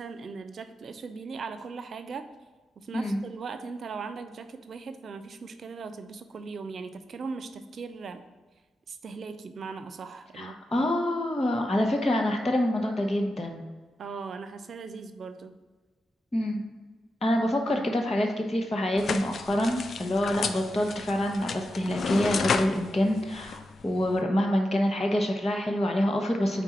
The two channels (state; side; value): normal; both; correlation 0.89